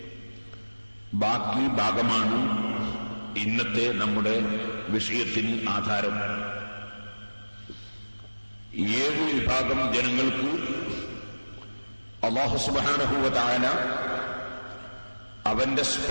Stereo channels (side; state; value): both; inverted; correlation -1.00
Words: ബാക്കി ഭാഗമാണ് ഇന്നത്തെ നമ്മുടെ വിഷയത്തിന് ആധാരം. 7 വിഭാഗം ജനങ്ങൾക്ക് അല്ലാഹു സുബ്ഹാനഹു വ തആല അവന്റെ